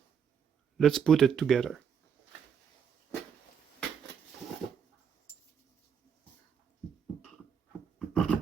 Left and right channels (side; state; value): left; quieter; 7.4 dB